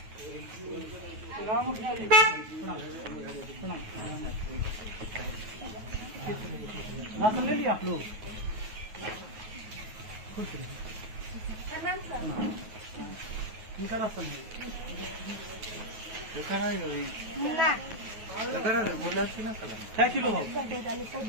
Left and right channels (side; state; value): left; late; 9.3 ms